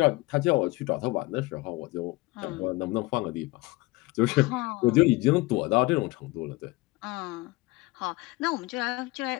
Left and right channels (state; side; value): quieter; right; 21.9 dB